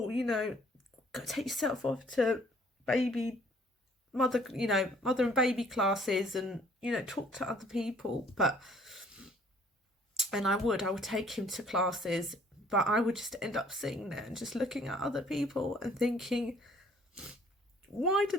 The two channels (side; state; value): both; normal; correlation 0.59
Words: go take yourself off to mother and baby classes, and talk to other people. And I would take him to classes, but I would just end up sitting there and just looking at other people and thinking, why do